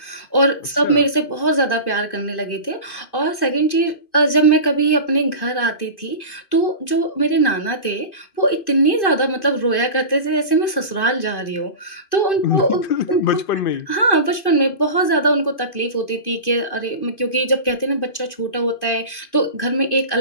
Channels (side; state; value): right; late; 2.5 ms